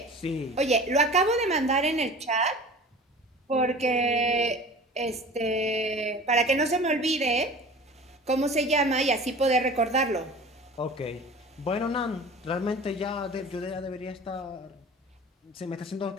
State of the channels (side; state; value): both; normal; correlation 0.40